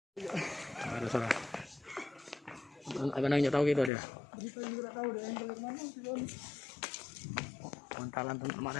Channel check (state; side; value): drops out; right; at 3.9 s